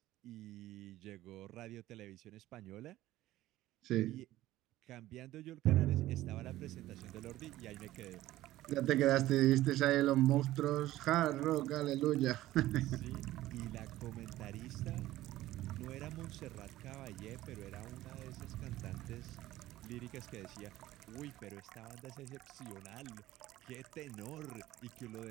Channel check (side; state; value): left; quieter; 15.5 dB